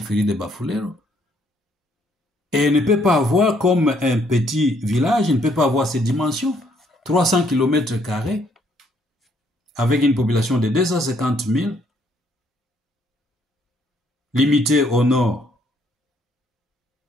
de Bafulero. Et il ne peut pas avoir comme un petit village, il ne peut pas avoir ces dimensions. 300 km², avec une population de 250 000, limitée au nord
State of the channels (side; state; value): both; normal; correlation 0.68